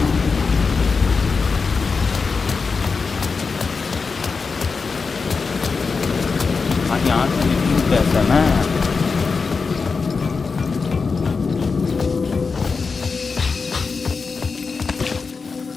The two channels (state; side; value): quieter; right; 4.8 dB